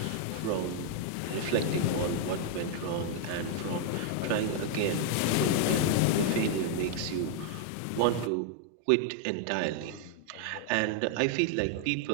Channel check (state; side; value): different; both; correlation 0.00